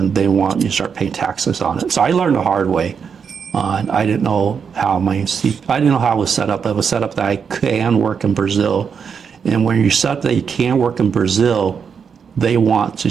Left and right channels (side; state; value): left; quieter; 6.5 dB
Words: They want you to start paying taxes on it. So I learned the hard way. I didn't know how I didn't know how it was set up. It was set up that I can work in Brazil. And when you set up that you can work in Brazil, they want to